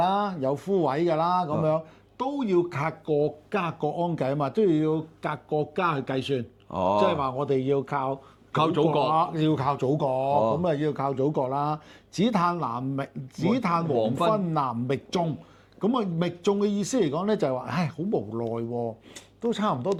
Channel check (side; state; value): both; identical; correlation 1.00